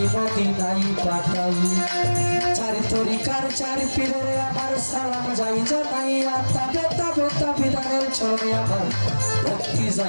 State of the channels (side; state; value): both; inverted; correlation -1.00